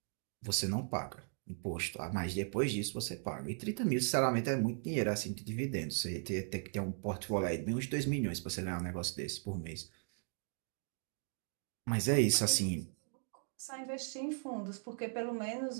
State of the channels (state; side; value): silent; left; 53 dB below the other